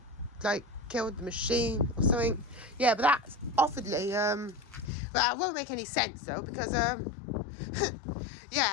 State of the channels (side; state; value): right; drops out; at 4.9 s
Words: like, killed the machine or something. Yeah, but that's awfully, but that won't make any sense though, because,